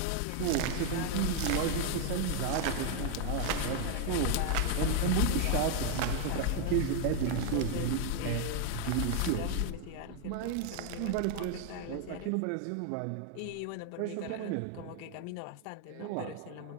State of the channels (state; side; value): different; both; correlation 0.00